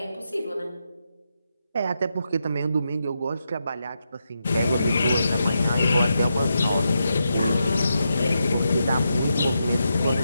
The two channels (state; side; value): inverted; both; correlation -0.85